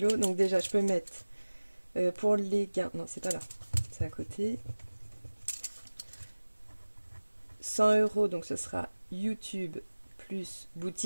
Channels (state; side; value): inverted; both; correlation -1.00